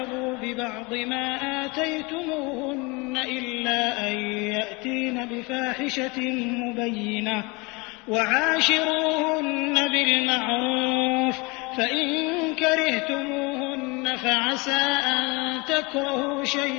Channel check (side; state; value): right; quieter; 27.0 dB